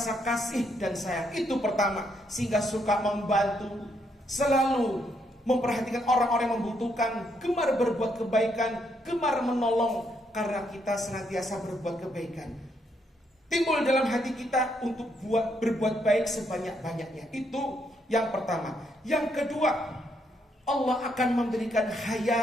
kasih dan sayang. Itu pertama, sehingga suka membantu, selalu memperhatikan orang-orang yang membutuhkan, gemar berbuat kebaikan, gemar menolong, karena kita senantiasa berbuat kebaikan. Timbul dalam hati kita untuk berbuat baik sebanyak-banyaknya. Itu yang pertama. Yang kedua, Allah akan memberikan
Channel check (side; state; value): both; normal; correlation 0.75